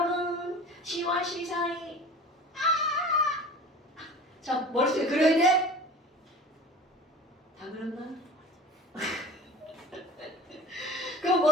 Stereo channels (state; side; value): normal; both; correlation 0.39